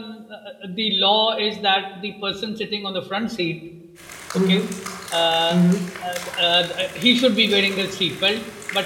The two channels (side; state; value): both; identical; correlation 1.00